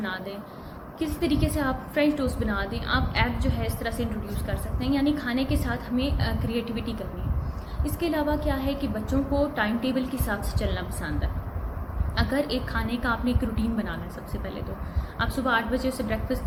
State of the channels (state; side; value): identical; both; correlation 1.00